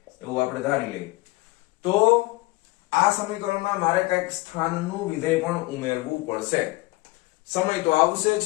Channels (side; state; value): right; quieter; 22.1 dB